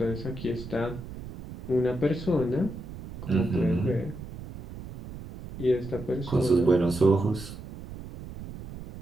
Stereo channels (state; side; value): noise; right; rumble, 12 dB below the sound